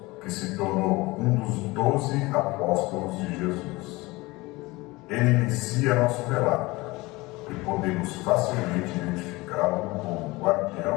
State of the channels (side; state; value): right; quieter; 22.0 dB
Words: que se tornou um dos 12 apóstolos de Jesus. Ele inicia nosso relato e podemos facilmente identificá-lo como